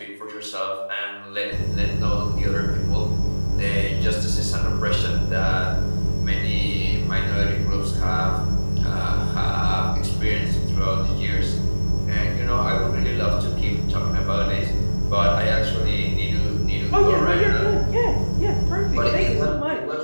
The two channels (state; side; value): inverted; both; correlation -1.00